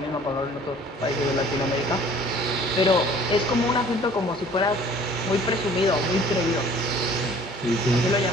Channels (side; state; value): both; normal; correlation 0.52